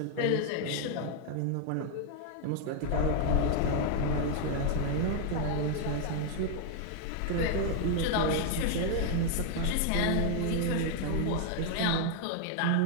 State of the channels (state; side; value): different; both; correlation 0.00